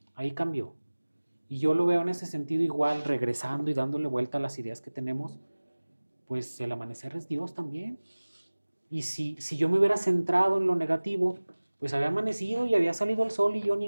ahí cambió. Y yo lo veo en ese sentido igual, regresando y dándole vuelta a las ideas que tenemos, pues el amanecer es Dios también. Y si yo me hubiera centrado en lo negativo, pues había amanecido y había salido el sol y yo ni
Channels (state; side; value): inverted; both; correlation -1.00